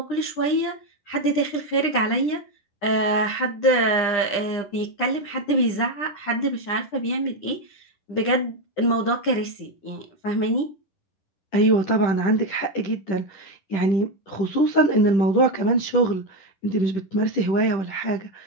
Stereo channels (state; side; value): late; right; 9.9 ms